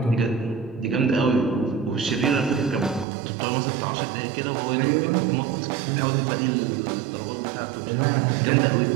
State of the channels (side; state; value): left; drops out; at 3.1 s